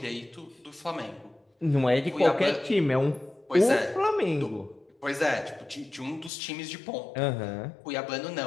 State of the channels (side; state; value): right; drops out; at 6.3 s